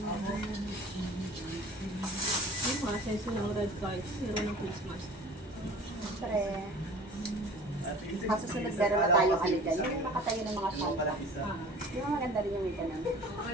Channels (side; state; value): both; normal; correlation 0.44